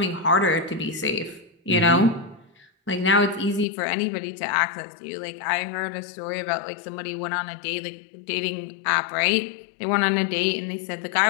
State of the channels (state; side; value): drops out; right; at 3.7 s